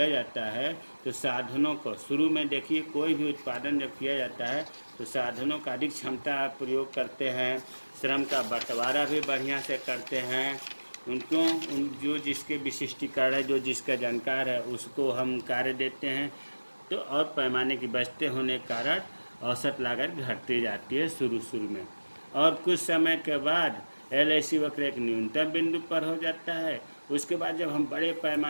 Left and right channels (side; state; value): both; inverted; correlation -1.00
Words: जाता है तो साधनों को शुरू में देखिए, कोई भी उत्पादन जब किया जाता है तो साधनों का अधिक क्षमता प्रयोग करते हैं, श्रम का बंटवारा भी बढ़िया से करते हैं, उनको जो जिसके विशिष्टीकरण है, जो जिसका जानकार है उसको हम कार्य देते हैं। तो और पैमाने की बचते होने के कारण औसत लागत घटती जाती है शुरू में, और कुछ समय के बाद LAC वक्र एक न्यूनतम बिंदु पर हो जाता है। उसके बाद जब हम बड़े